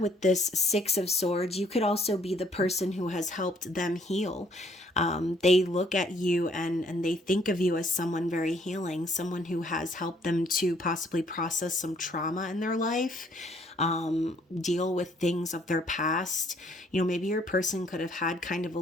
with this Six of Swords, you could also be the person who has helped them heal. They look at you and they think of you as someone very healing, someone who has helped them to possibly process some trauma in their life, deal with things of their past. Maybe your person could have had kind of a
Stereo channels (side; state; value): both; normal; correlation 0.64